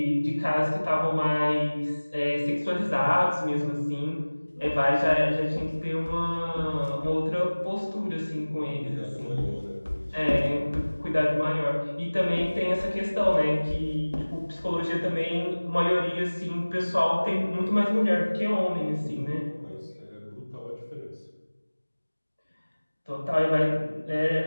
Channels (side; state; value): both; inverted; correlation -1.00